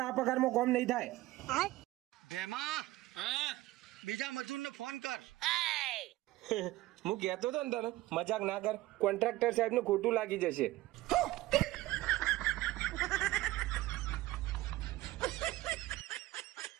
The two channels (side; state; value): left; quieter; 17.4 dB